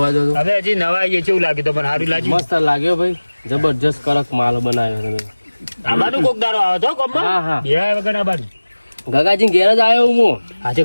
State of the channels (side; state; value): both; inverted; correlation -1.00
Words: જો તો. હવે હજી નવા આવીએ કેવું લાગે તો મને સારું લાગ્યું મસ્ત લાગ્યો ભાઈ. જબરજસ્ત કડક માલ બનાવ્યો તમે. આબાનું કોક દારો આવે તો ગોમમાં હા, હા. બે વગર આબાનું ગગાજી ઘેર જ આવ્યો હું. આજે